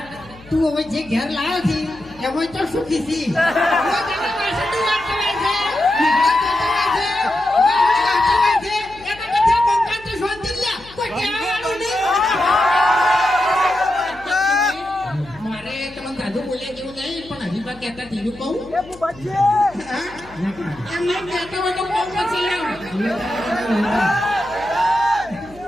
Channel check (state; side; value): noise; left; hum, 22 dB below the sound